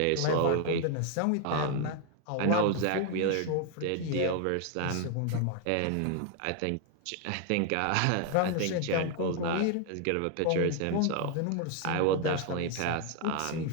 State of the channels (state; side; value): different; both; correlation 0.01